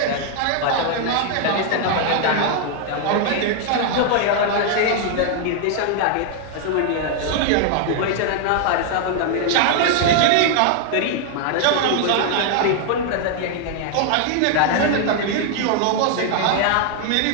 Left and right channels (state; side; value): different; both; correlation 0.00